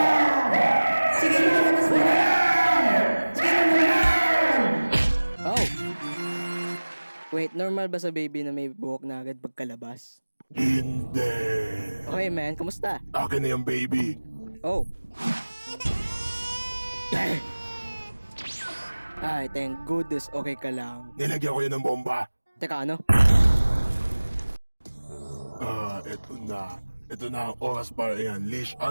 Sige na, labas mo na yan! Sige na naman! Oh! Wait, normal ba sa baby na may buhok na agad pagkalabas? Hindi. Okay, man. Kamusta? Akin na yung baby. Oh. Ay, thank goodness. Okay ka lang. Nilagyan ko yun ng bomba. Teka, ano? Eto na. Ito na ang oras para i-unleash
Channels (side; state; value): both; inverted; correlation -1.00